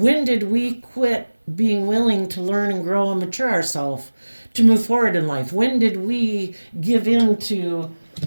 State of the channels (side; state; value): both; inverted; correlation -1.00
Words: did we quit being willing to learn and grow and mature ourselves to move forward in life? When did we give in to